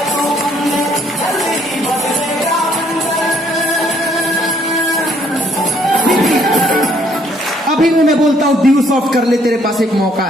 मैं बोलता हूं ड्यू सॉफ्ट कर ले, तेरे पास एक मौका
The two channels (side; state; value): both; normal; correlation 0.65